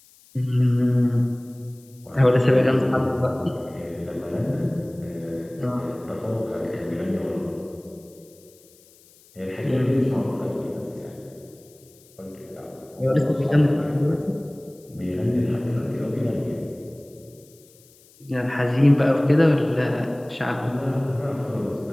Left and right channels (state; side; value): noise; left; hiss, 27 dB below the sound